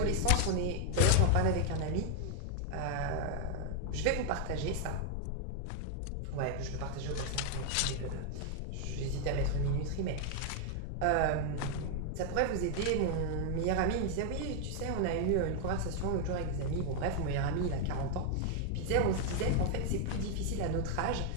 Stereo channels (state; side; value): different; both; correlation 0.00